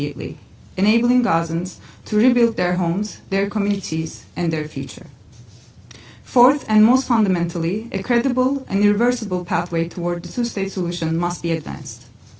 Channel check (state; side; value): identical; both; correlation 1.00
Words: enabling Gazans to rebuild their homes, their communities, and their future. Fourth, and most fundamentally, a credible and irreversible pathway toward the two-state solution must be advanced.